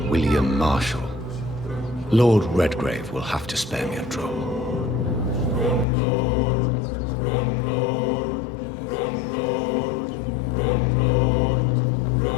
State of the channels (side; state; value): right; drops out; at 5.9 s